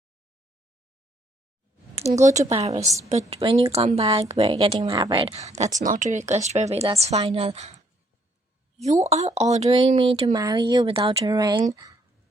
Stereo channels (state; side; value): normal; both; correlation 0.68